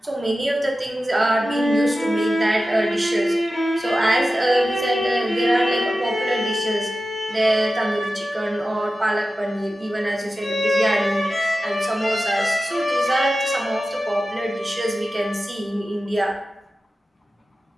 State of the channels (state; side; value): normal; both; correlation 0.94